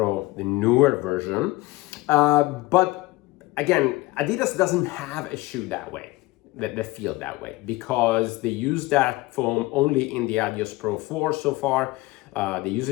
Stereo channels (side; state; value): right; quieter; 20.2 dB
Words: the newer version. But again, Adidas doesn't have a shoe that way, that feel that way, because they use that foam only in the Adios Pro 4 so far. They use